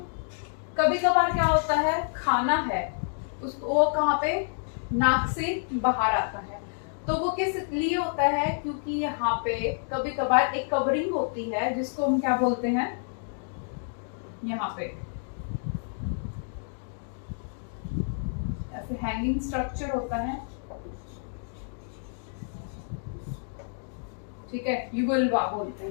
कभी कभार क्या होता है, खाना है उसको वो कहाँ पे, नाक से बाहर आता है, तो वो किस लिए होता है, क्योंकि यहाँ पे कभी कभार एक कवरिंग होती है जिसको हम क्या बोलते हैं, यहाँ पे ऐसे हैंगिंग स्ट्रक्चर होता है, ठीक है, युगलवा बोलते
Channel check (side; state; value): right; silent; digital silence